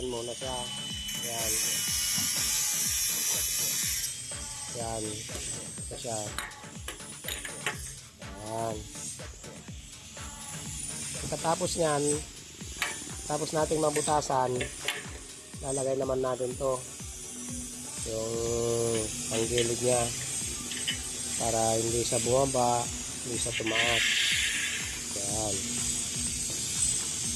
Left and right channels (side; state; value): both; identical; correlation 1.00